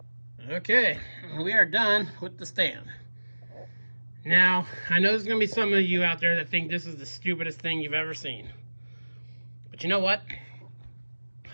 Okay, we are done with the stand. Now, I know there's going to be some of you out there that think this is the stupidest thing you've ever seen. But you know what?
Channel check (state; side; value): inverted; both; correlation -1.00